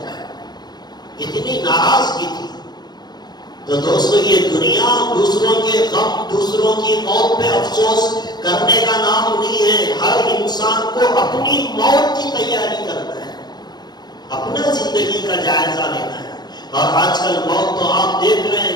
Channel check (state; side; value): late; right; 0.20 ms